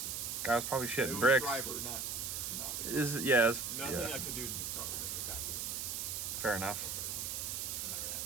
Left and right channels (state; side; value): noise; right; hiss, 3 dB below the sound